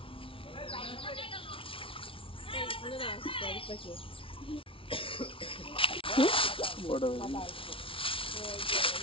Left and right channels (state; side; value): late; right; 0.26 ms